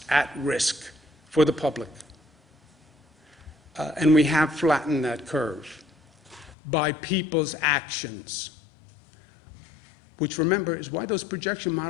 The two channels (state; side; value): drops out; right; at 6.6 s